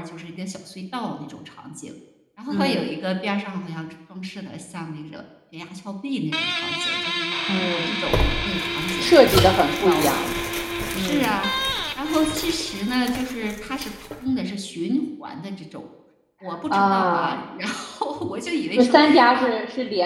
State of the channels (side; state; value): both; identical; correlation 1.00